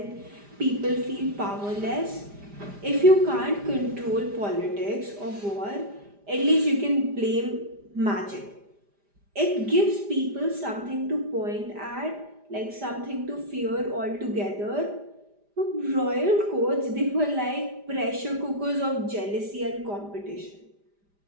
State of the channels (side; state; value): left; late; 5.0 ms